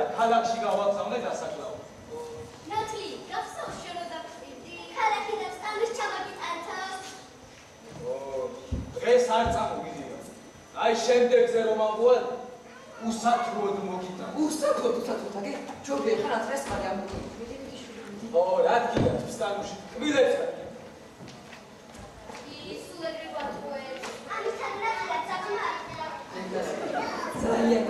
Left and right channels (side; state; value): both; identical; correlation 1.00